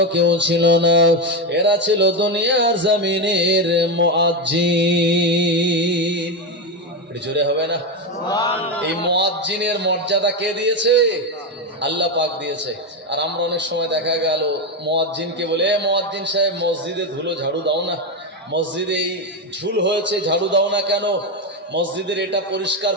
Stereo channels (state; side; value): normal; both; correlation 0.11